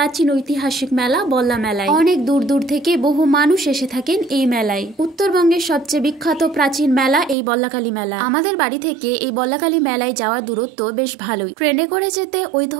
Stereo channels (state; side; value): drops out; left; at 7.4 s